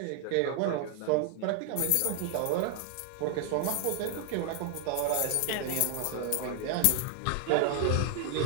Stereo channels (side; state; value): both; different; correlation 0.00